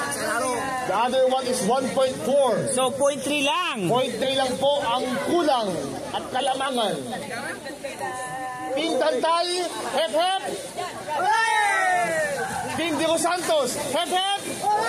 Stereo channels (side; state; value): both; identical; correlation 1.00